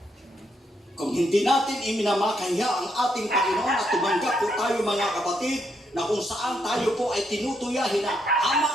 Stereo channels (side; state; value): both; normal; correlation 0.77